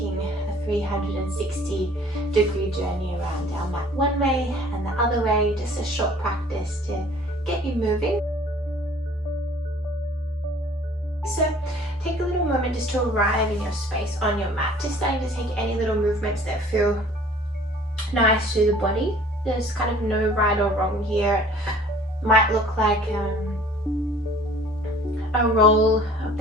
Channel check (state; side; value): normal; both; correlation 0.51